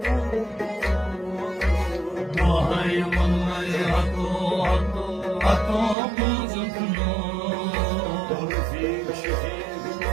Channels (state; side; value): drops out; left; at 6.0 s